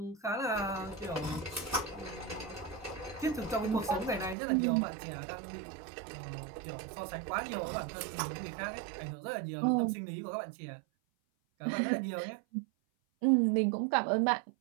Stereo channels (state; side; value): drops out; left; at 4.4 s